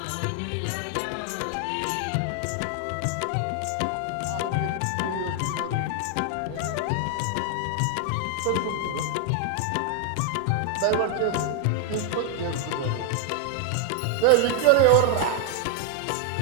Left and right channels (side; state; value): both; different; correlation 0.00